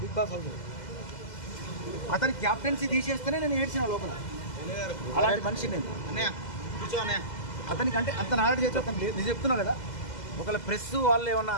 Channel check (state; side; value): late; right; 2.0 ms